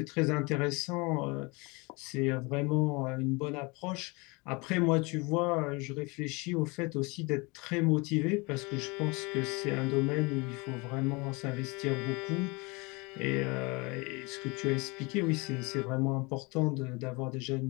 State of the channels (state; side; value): quieter; right; 27.1 dB